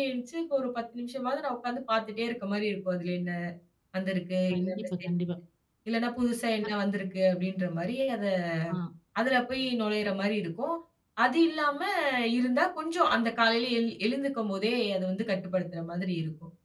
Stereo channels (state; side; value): identical; both; correlation 1.00